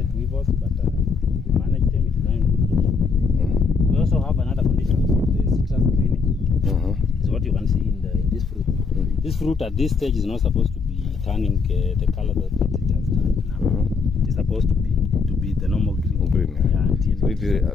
weevils, but we managed them. It is now in good condition. We also have another condition called the citrus greening. Is what you can see in this fruit. This fruit at this stage is not supposed to be turning the color that it has turned now. It is supposed to be the normal green. Yeah, until so it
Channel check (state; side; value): quieter; right; 4.9 dB